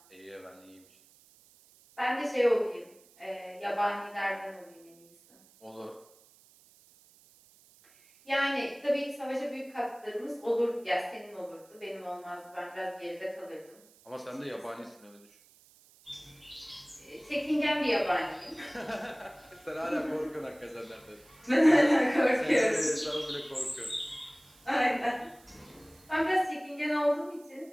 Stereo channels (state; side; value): noise; right; hiss, 27 dB below the sound